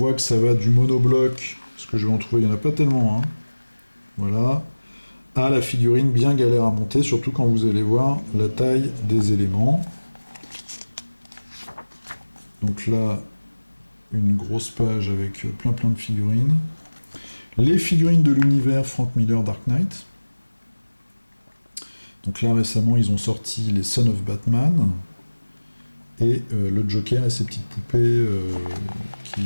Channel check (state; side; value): inverted; both; correlation -1.00